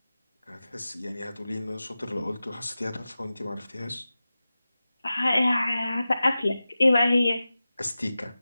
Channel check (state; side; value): inverted; both; correlation -0.95